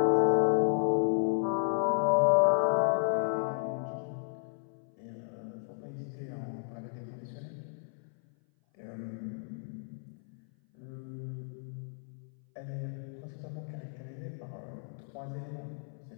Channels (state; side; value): silent; right; 56 dB below the other